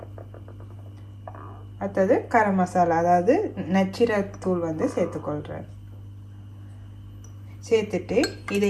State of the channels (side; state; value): both; identical; correlation 1.00